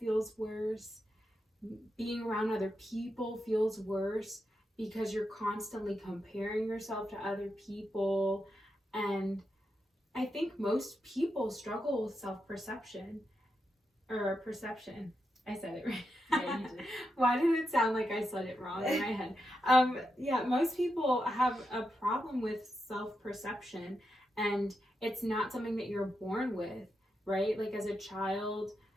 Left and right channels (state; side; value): normal; both; correlation 0.86